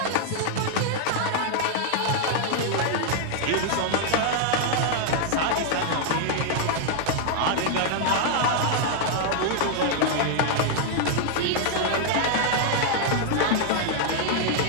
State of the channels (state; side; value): different; both; correlation 0.00